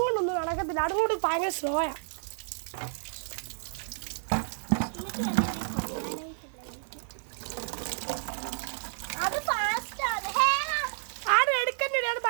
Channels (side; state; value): left; silent; digital silence